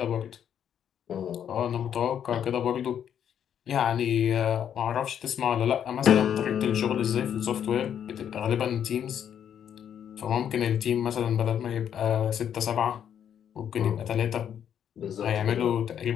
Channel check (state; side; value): quieter; right; 9.0 dB